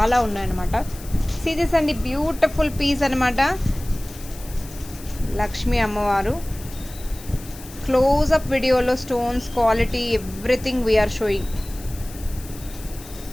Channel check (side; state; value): left; noise; hiss, 17 dB below the sound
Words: ఉన్నాయన్నమాట. సీరియస్ అండి, బ్యూటిఫుల్ పీస్ అనమాట. లక్ష్మీ అమ్మవారు. క్లోజ్అప్ వీడియోలో stones quality everything we are showing.